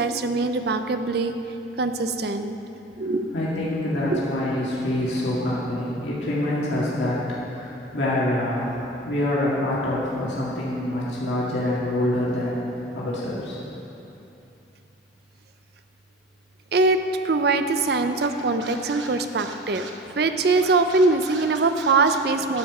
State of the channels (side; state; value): both; normal; correlation 0.35